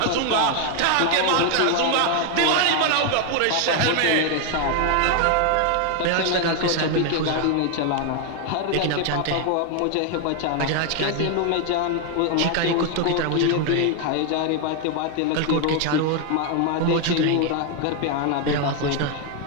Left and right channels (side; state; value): both; different; correlation 0.01